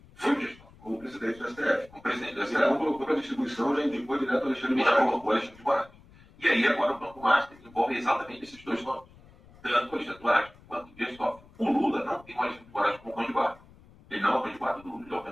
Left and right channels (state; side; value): noise; left; rumble, 24 dB below the sound